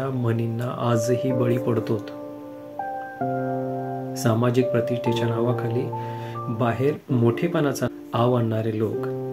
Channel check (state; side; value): identical; both; correlation 1.00